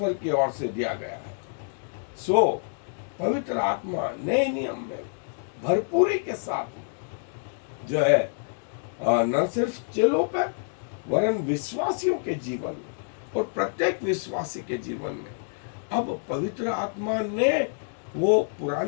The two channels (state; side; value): silent; right; digital silence